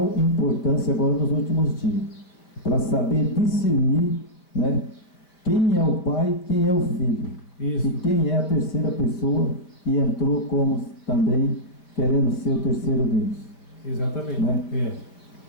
importância agora nos últimos dias, para saber discernir, né, quem é o Pai, quem é o Filho, Isso. e quem é a terceira pessoa e entrou como também querendo ser o terceiro Deus. Exatamente. Né?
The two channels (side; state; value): right; late; 5.4 ms